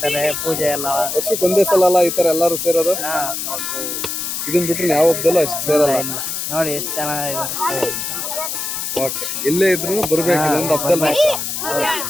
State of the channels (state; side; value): noise; left; hiss, 4 dB below the sound